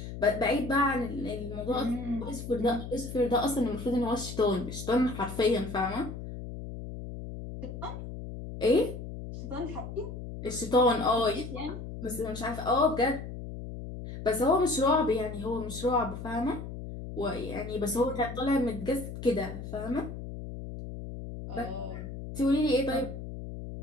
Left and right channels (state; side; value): noise; left; hum, 9 dB below the sound